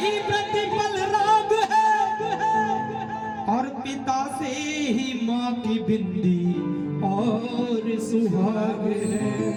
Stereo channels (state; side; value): identical; both; correlation 1.00